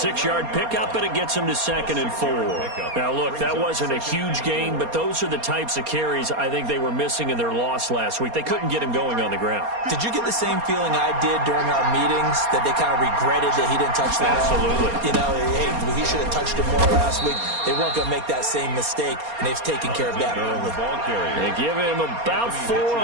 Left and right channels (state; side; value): late; left; 4.3 ms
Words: pickup, and it gets him to 2nd and 4. Now, look, that wasn't a huge gain, but those are the types of carries I think they were missing in their loss last week. They couldn't get him going on the ground. Did you get the same feeling I did during our meetings, that they kind of regretted that he didn't touch that? Absolutely. You know, hey, he should have touched it more last week. They weren't going to make that same mistake, and they've taken care of that early. They give him about 4